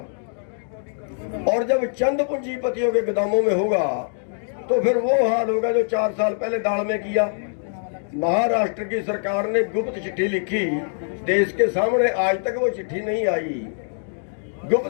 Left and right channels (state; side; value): silent; right; digital silence